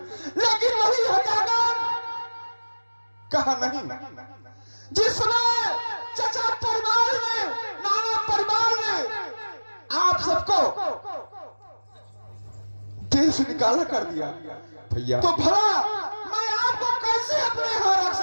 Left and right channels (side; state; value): both; inverted; correlation -1.00